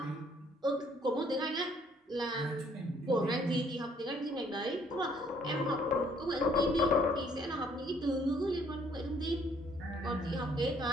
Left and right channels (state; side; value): normal; both; correlation 0.63